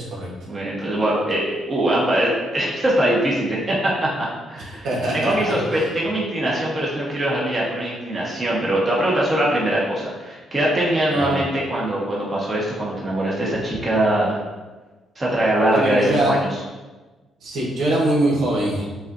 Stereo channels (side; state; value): both; normal; correlation 0.76